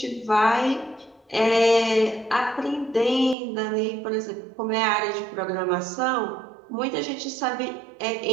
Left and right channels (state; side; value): drops out; left; at 3.4 s